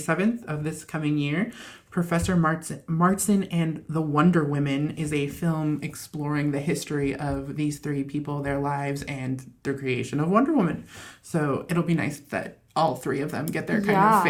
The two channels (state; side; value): identical; both; correlation 1.00